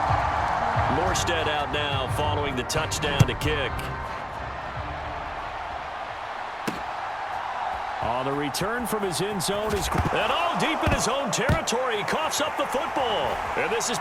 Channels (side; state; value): both; identical; correlation 1.00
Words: Morstead out now following the touchdown to kick. On the return from his end zone is... And all deep in his own territory, he coughs up the football. And this is